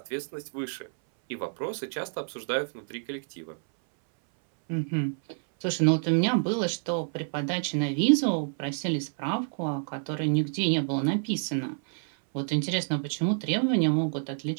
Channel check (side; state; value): left; silent; 59 dB below the other